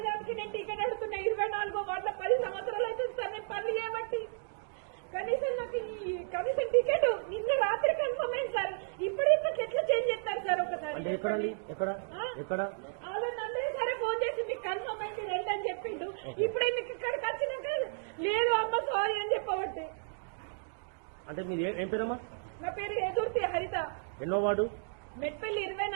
దానికి నేను టికెట్ అడుగుతున్నా. 24 వార్డుల 10 సంవత్సరాలు అవుతుంది సార్ నేను పనులు చేయబట్టి. కనీసం నాకు ఈ కమిషన్ టికెట్ నిన్న రాత్రి కన్ఫర్మ్ అయింది సార్. ఇప్పటికి ఎట్లా చేంజ్ చేస్తారు సార్? ఒకసారి అందరూ సరే ఫోన్ చేసి మీకు కన్ఫర్మ్ అయింది రండి అని చెప్పిండు. ఇప్పుడే మీకు ఇక్కడికి వచ్చినాక లేదు అమ్మ సారీ అని చెప్పబట్టి. అంటే మీరు ఏం పేరమ్మా? నా పేరు ఎదుర్తి హరిత. ఎన్నో వార్డు? మెట్పల్లి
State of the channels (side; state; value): left; silent; digital silence